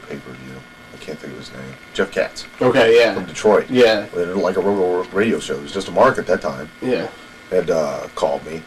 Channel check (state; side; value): identical; both; correlation 1.00